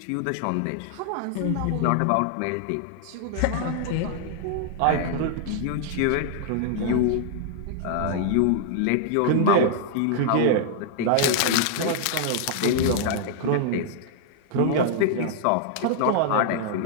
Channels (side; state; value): both; different; correlation -0.01